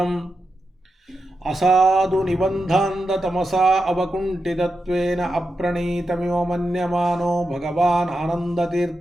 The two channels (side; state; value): both; normal; correlation 0.88